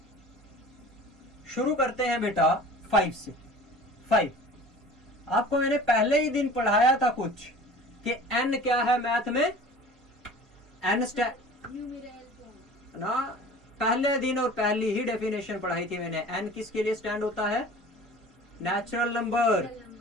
शुरू करते हैं बेटा 5 से। 5 आपको मैंने पहले ही दिन पढ़ाया था कुछ कि n क्या है मैथ में। n न्यूमेरल फॉर्म ना, पहले दिन और पहली ही डेफिनेशन पढ़ाई थी मैंने। n किसके लिए स्टैंड होता है? Natural number.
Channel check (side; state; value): both; normal; correlation 0.43